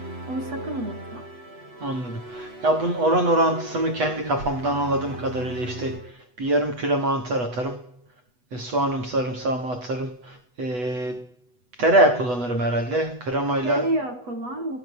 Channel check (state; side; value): late; left; 8.1 ms